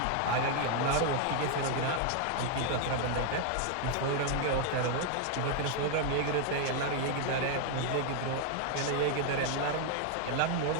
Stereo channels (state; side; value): different; both; correlation 0.00